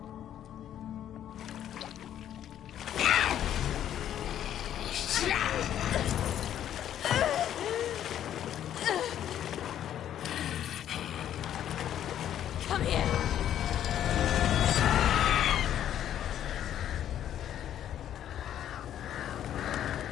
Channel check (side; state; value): right; quieter; 10.7 dB